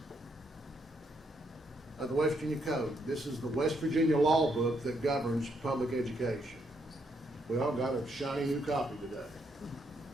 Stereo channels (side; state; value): both; normal; correlation 0.75